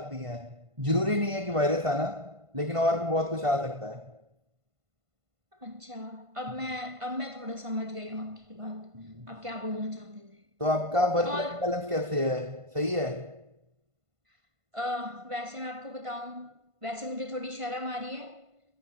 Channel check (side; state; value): left; late; 1.5 ms